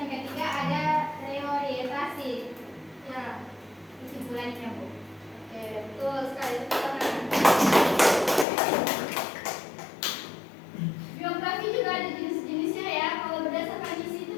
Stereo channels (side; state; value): right; drops out; at 8.5 s